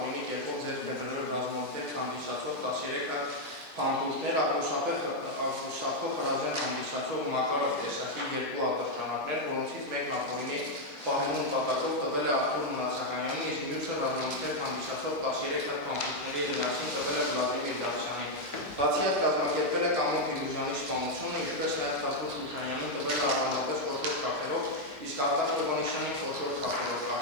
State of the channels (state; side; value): normal; both; correlation 0.01